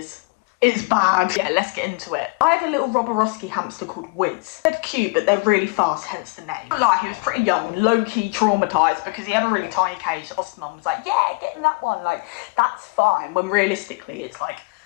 It's bad. Yeah, let's get into it. I had a little Robberowski hamster called Wiz. They're cute, but they're really fast, hence the name. But like, he was pretty young, low-key traumatised because he had a really tiny cage. The foster mum was like, yeah, get in that one. Like, that's fine. When realistically, it's like,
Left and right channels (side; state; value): right; quieter; 29.9 dB